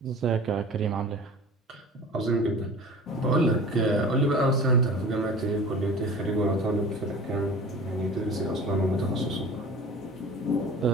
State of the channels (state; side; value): normal; both; correlation 0.40